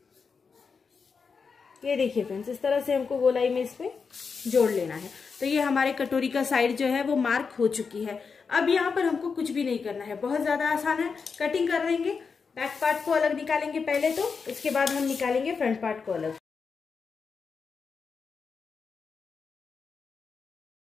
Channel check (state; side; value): quieter; right; 5.4 dB